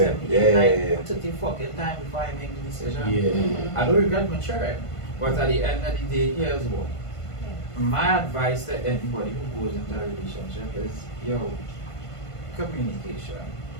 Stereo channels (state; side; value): late; right; 1.5 ms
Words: 7, yeah, 8, 9, yeah, yeah. 30 fucking time before I make the decision. Yeah. I don't regret maturing, but at the end of the day, here's what. My advice to anybody who goes into a relationship is, yo, communication.